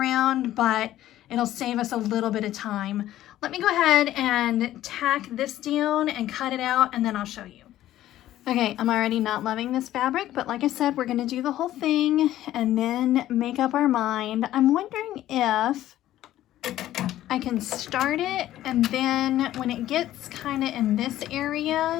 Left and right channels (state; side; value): quieter; right; 13.6 dB